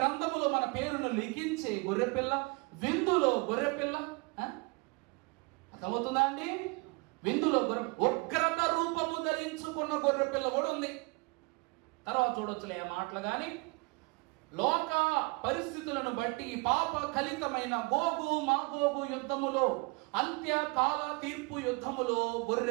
మన పేరును లిఖించే గొర్రెపిల్ల, విందులో గొర్రెపిల్ల. అర్థమవుతుందా అండి? విందులో ఉగ్రత రూపము ధరించుకున్న గొర్రెపిల్ల కూడా ఉంది. తర్వాత చూడొచ్చులే ఆ మాటలు. కానీ లోక పరిస్థితులను బట్టి పాప కలితమైన గోగు మాగోగు యుద్ధములో, అంత్యకాల తీర్పు యుద్ధములో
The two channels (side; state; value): left; quieter; 28.6 dB